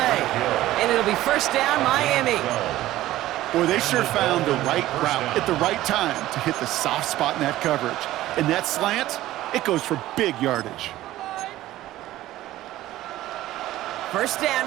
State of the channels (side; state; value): left; quieter; 15.3 dB